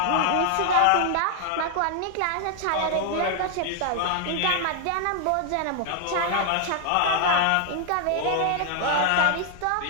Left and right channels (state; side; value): different; both; correlation 0.00